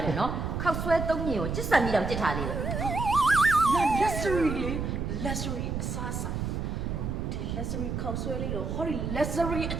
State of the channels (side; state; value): right; noise; rumble, 3 dB below the sound